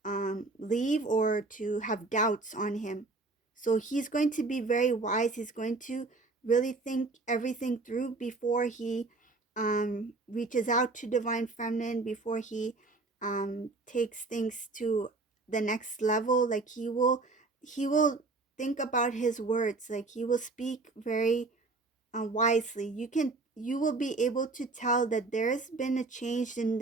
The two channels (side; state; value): left; quieter; 3.5 dB